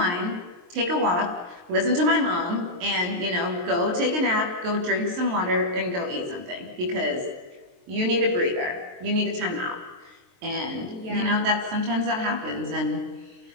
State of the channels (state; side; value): late; left; 23 ms